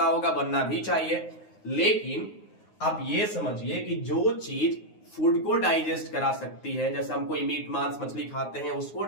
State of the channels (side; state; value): right; late; 9.6 ms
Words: होगा, बनना भी चाहिए। लेकिन आप ये समझिए कि जो चीज फूड को डाइजेस्ट करा सकती है, जैसे हम कोई मीट मांस मछली खाते हैं उसको